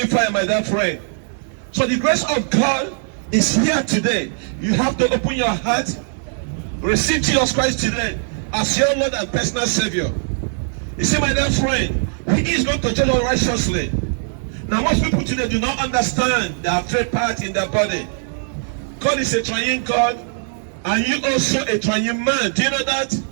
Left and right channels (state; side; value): silent; left; digital silence